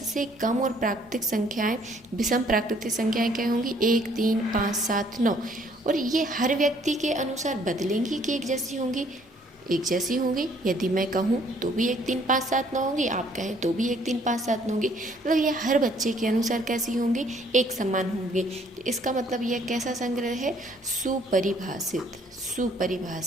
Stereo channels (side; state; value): both; normal; correlation 0.62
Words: से कम और प्राकृतिक संख्याएं, विषम प्राकृतिक संख्याएं क्या होंगी? 1, 3, 5, 7, 9। और ये हर व्यक्ति के अनुसार बदलेंगी कि एक जैसी होंगी? एक जैसी होंगी। यदि मैं कहूँ तो भी 1, 3, 5, 7, 9 होंगी, आप कहें तो भी 1, 3, 5, 7, 9 होंगी। मतलब ये हर बच्चे के अनुसार कैसी होंगी? एक समान होंगी। तो इसका मतलब यह कैसा संग्रह है? सुपरिभाषित,